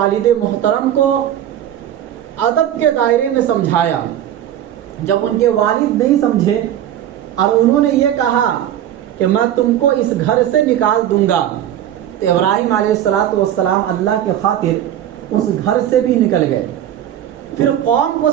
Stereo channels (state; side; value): quieter; left; 11.2 dB